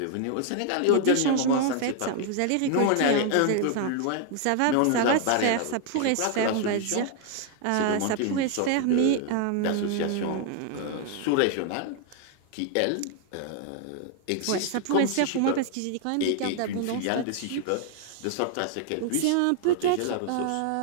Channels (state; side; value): different; both; correlation 0.00